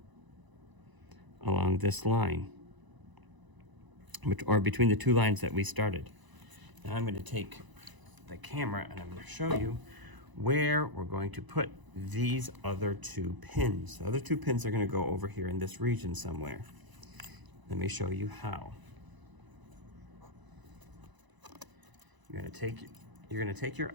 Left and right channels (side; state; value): left; late; 1.0 ms